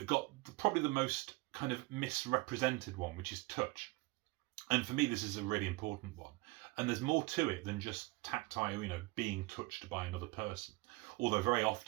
got probably the most kind of misrepresented one, which is touch. And for me, this is a really important one. And there's more to it than just tactile, being touched by another person. Although very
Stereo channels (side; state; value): left; quieter; 24.1 dB